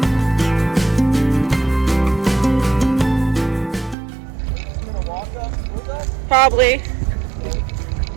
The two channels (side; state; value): left; drops out; at 4.0 s